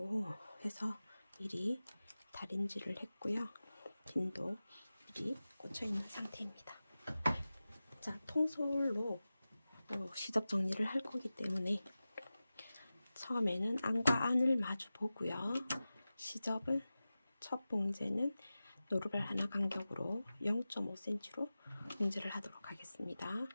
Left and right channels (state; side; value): inverted; both; correlation -0.95